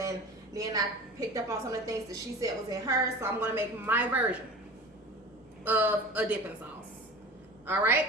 then I picked up on some of the things that she said was in hers. So I'm going to make my version of a dipping sauce.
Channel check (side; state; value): both; normal; correlation 0.36